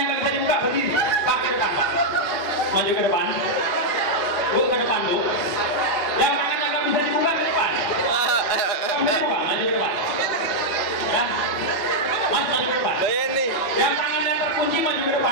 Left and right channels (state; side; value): late; right; 4.8 ms